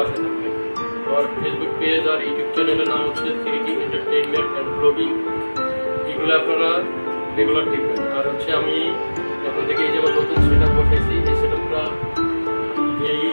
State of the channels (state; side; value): inverted; both; correlation -1.00